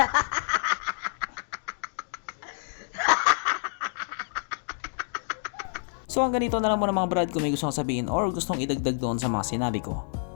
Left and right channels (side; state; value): right; silent; digital silence